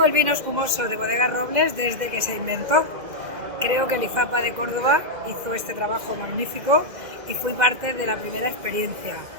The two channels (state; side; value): late; left; 2.0 ms